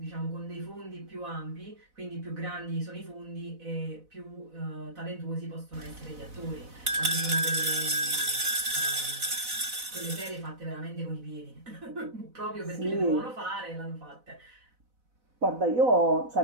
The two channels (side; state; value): left; late; 4.0 ms